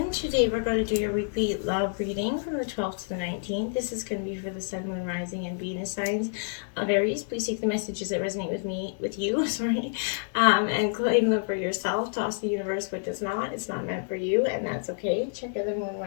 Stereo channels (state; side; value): silent; right; digital silence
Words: Today we're going to do your weekly love reading from the 12th to the 19th. This is going to be for the Sun, Moon, Rising, and Venus signs of Aries. Please take the messages that resonate with you, and claim them for yourself. Toss the universe what does not. It's not meant for you, and that's okay. Check out the Moon,